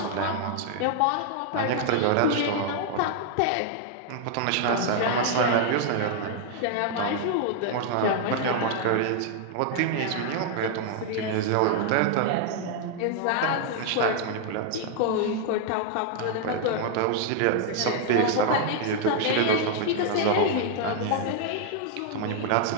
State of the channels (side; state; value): both; different; correlation 0.00